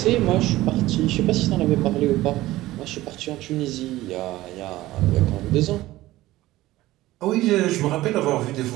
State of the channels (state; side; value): quieter; left; 16.9 dB